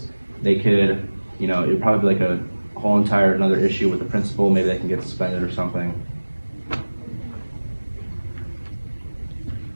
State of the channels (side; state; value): both; inverted; correlation -1.00